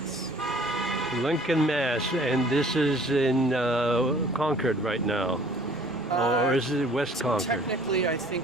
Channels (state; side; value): normal; both; correlation 0.53